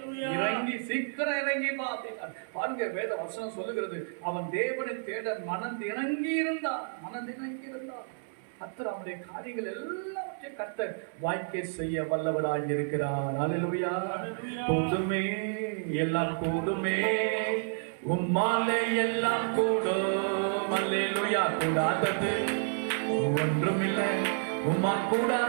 இறங்கி சீக்கிரம் இறங்கி வா அப்படின்னா பாருங்க, வேத வசனம் சொல்லுகிறது, அவன் தேவனை தேட மனதிணங்கி இருந்தான். கர்த்தர் அவனுடைய காரியங்கள் எல்லாவற்றையும் கர்த்தர் வாய்க்கை செய்ய வல்லவராய் இருக்கிறார். அல்லேலூயா. கூடுமே, எல்லாம் கூடுமே, உம்மாலே எல்லாம் கூடும். அல்லேலூயா. கூடாதது ஒன்றுமில்லை, உம்மால்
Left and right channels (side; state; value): left; silent; 58 dB below the other